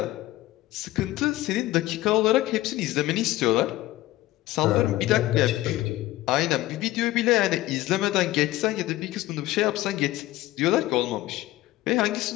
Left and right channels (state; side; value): quieter; right; 16.7 dB